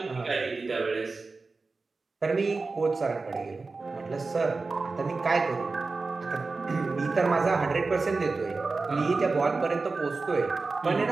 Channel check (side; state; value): left; quieter; 3.9 dB